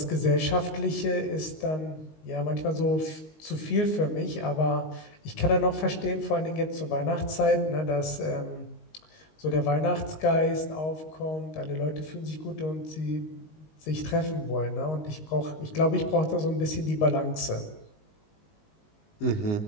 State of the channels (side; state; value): right; late; 19 ms